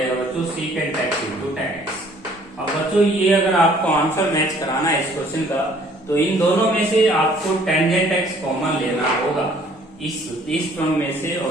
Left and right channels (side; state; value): both; normal; correlation 0.58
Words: बच्चों secant x into tan x। अब बच्चों ये अगर आपको आंसर मैच कराना है इस क्वेश्चन का, तो इन दोनों में से आपको टेंजेंट x कॉमन लेना होगा। इस टर्म में से